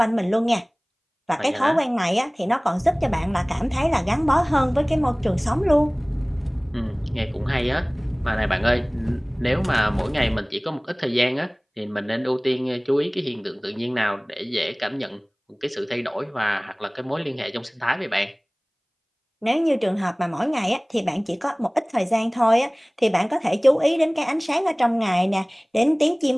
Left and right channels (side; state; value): both; identical; correlation 1.00